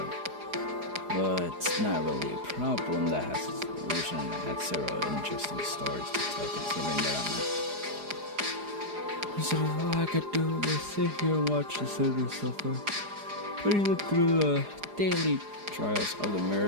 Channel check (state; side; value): late; left; 4.9 ms